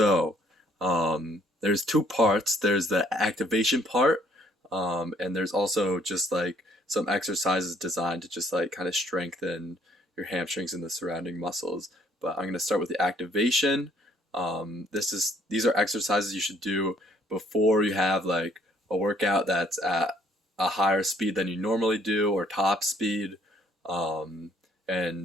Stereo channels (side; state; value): both; normal; correlation 0.63